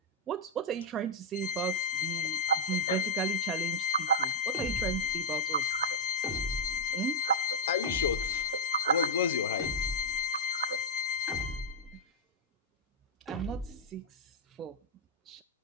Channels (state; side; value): normal; both; correlation -0.05